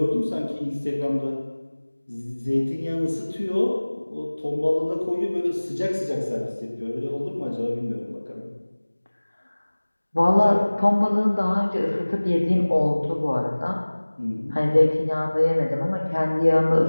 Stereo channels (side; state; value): both; inverted; correlation -1.00